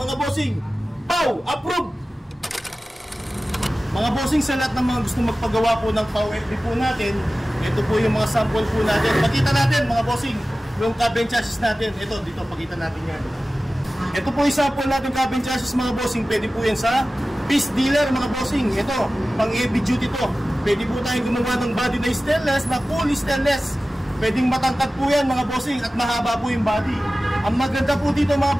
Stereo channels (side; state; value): both; normal; correlation 0.96